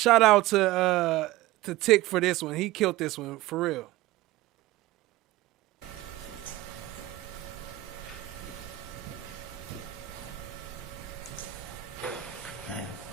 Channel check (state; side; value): quieter; left; 16.5 dB